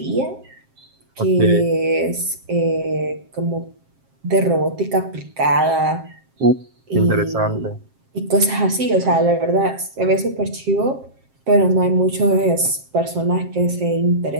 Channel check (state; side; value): late; left; 7.5 ms